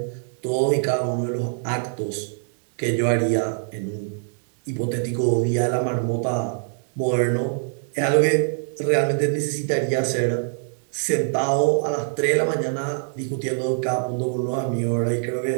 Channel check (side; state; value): left; silent; digital silence